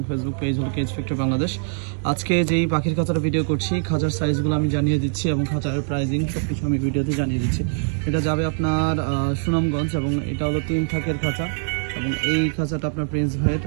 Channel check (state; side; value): silent; left; 64 dB below the other